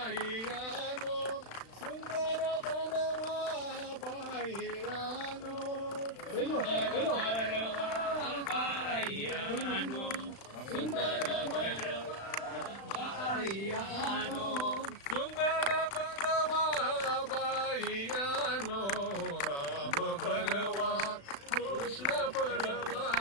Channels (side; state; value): right; late; 36 ms